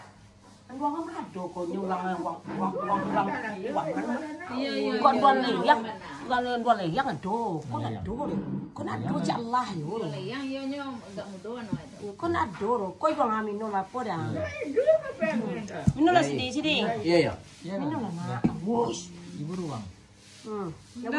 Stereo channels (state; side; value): identical; both; correlation 1.00